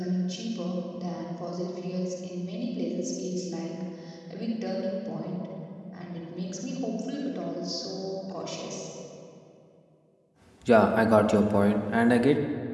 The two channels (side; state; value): both; identical; correlation 1.00